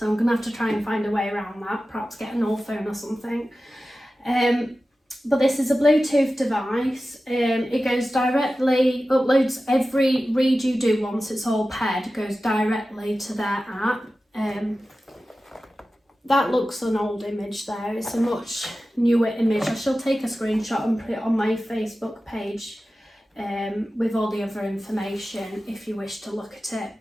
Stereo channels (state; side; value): normal; both; correlation 0.94